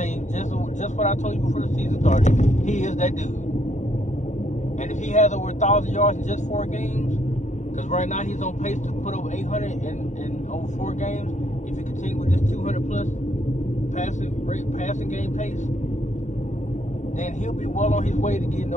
you just what I told you before the season started. He is that dude. And if he has over 1,000 yards in just 4 games, because right now he's on pace to put over 800 in over 4 games. If he continues with this 200+ passing game pace, then he'll be well on his way to getting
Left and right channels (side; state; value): right; late; 0.34 ms